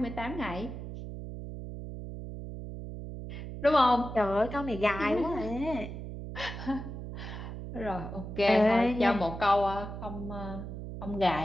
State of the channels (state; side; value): noise; right; hum, 8 dB below the sound